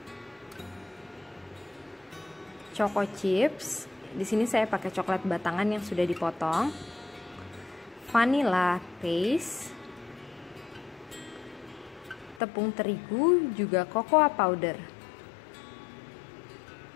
choco chips. Di sini saya pakai coklat batangan yang sudah dipotong. Vanilla paste, tepung terigu, juga cocoa powder.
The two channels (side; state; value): right; drops out; at 12.4 s